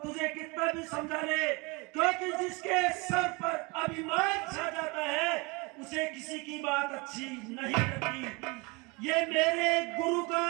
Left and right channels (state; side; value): quieter; left; 27.4 dB